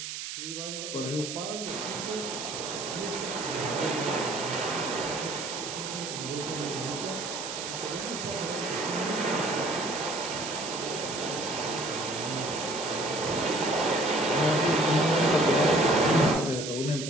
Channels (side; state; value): right; noise; hiss, 6 dB below the sound